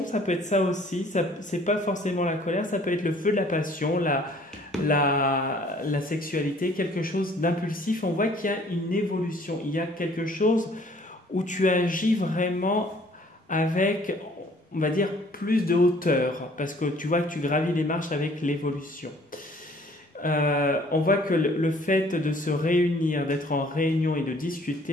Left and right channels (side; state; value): both; normal; correlation 0.57